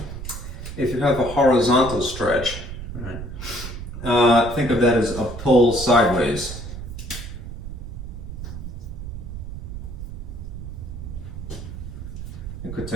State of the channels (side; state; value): right; noise; rumble, 8 dB below the sound